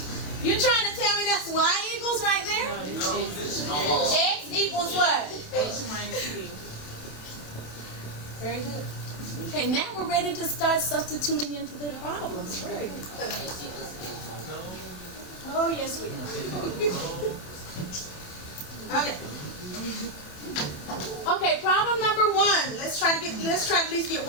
you're trying to tell me that's Y equals right there? X equals what? H minus P. Very good. Okay, now we're ready to start substituting into the problems. Very good. Oh, yes, we are. Okay. Okay, problem number 1. Let's try to at least get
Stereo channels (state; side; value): late; right; 27 ms